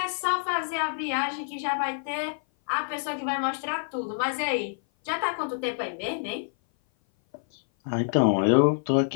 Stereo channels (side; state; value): right; silent; 56 dB below the other